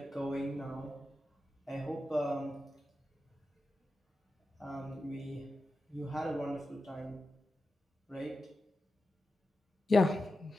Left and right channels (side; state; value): both; normal; correlation 0.91